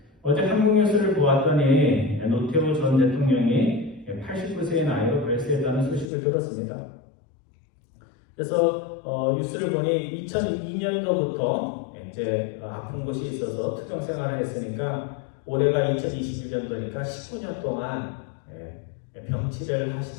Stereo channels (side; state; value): right; drops out; at 6.1 s